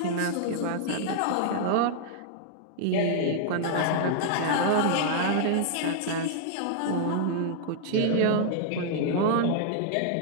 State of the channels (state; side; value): different; both; correlation -0.01